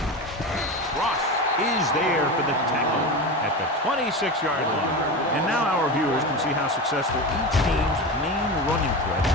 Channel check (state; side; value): normal; both; correlation 0.24